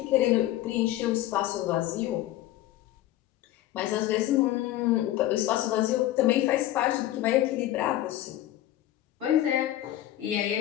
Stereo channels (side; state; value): right; quieter; 14.2 dB